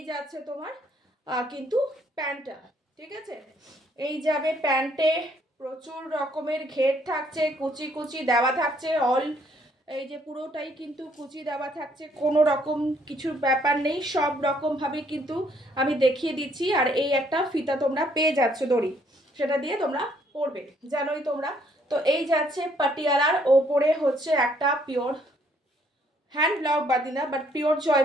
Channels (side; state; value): both; normal; correlation 0.67